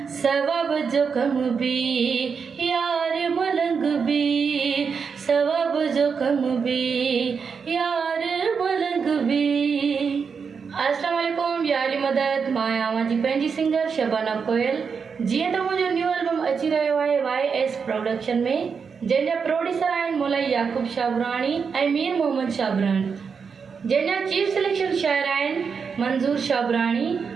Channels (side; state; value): left; quieter; 5.9 dB